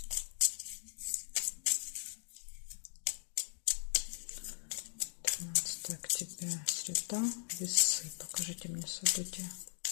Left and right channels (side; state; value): right; silent; digital silence